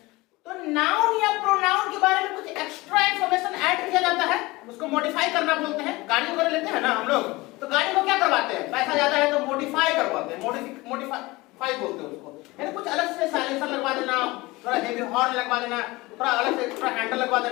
तो नाउन या प्रोनाउन के बारे में कुछ एक्स्ट्रा इंफॉर्मेशन ऐड किया जाता है, उसको मॉडिफाई करना बोलते हैं। गाड़ी वगैरह लेते हैं ना हम लोग, तो गाड़ी को क्या करवाते हैं, पैसा ज्यादा है तो मॉडिफाई करवाते हैं, मॉडिफाई बोलते हैं उसको, यानी कुछ अलग से साइलेंसर लगवा देना, थोड़ा हेवी हॉर्न लगवा देना, थोड़ा अलग से थोड़ा हैंडल लगवा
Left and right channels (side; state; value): right; quieter; 21.5 dB